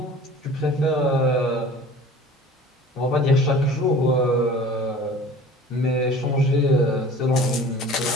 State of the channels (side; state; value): both; normal; correlation 0.44